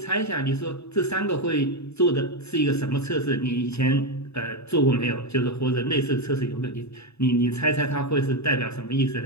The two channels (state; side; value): late; right; 0.80 ms